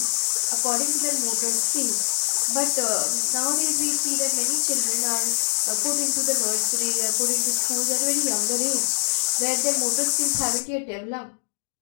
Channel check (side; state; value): right; silent; digital silence